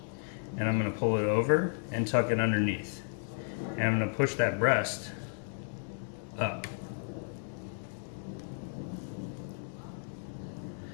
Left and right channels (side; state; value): right; silent; digital silence